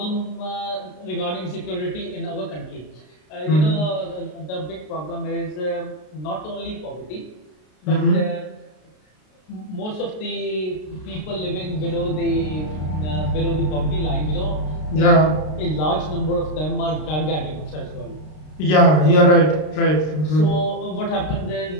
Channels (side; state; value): right; late; 33 ms